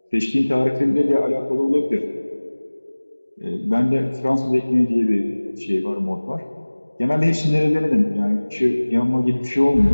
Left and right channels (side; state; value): both; inverted; correlation -1.00